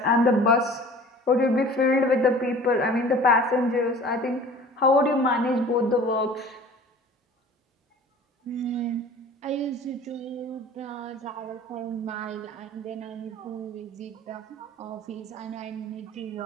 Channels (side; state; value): both; normal; correlation 0.45